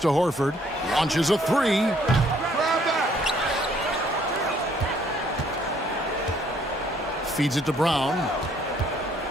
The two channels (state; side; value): normal; both; correlation 0.64